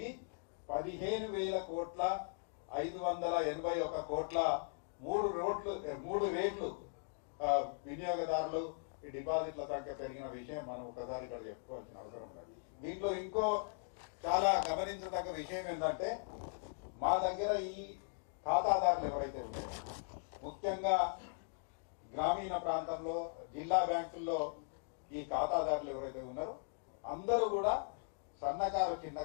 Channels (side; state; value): right; silent; digital silence